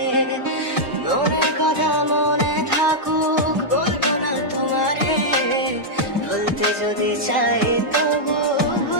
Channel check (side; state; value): both; normal; correlation -0.06